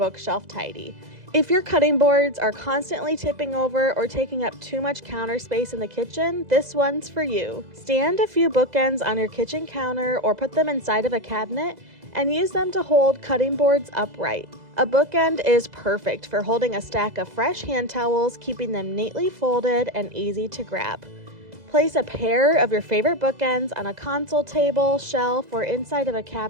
tidy. If your cutting boards are constantly tipping over or taking up too much counter space in the kitchen, this one's for you. Stand a few bookends on your kitchen counter or put them inside of a cabinet and use them to hold cutting boards upright. A bookend is perfect for holding a stack of fresh hand towels, keeping them neatly folded and easy to grab. Place a pair of your favorite bookends on a console table, shelf, or inside of a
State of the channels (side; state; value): left; late; 2.0 ms